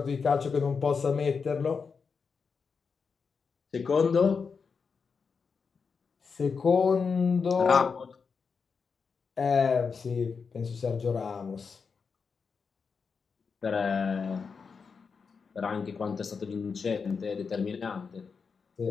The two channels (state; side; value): quieter; right; 5.4 dB